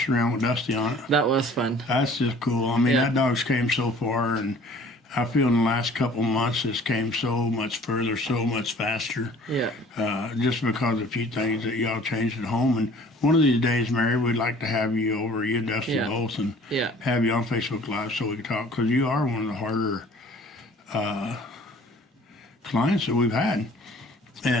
around with Dusty on it. That was fun. That's just cool. I mean, Yeah. that dog's came so far, and I feel in the last couple months it's came so much further, so much faster. Yeah. Just because of a few things that y'all changed at home. And one of these days, Mary, we'd like to have you over, you and Dusty Yeah. both, and Yeah. have you on Facebook Live so we can talk, because you are one of the harder clients that we've had.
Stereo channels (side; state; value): both; normal; correlation 0.50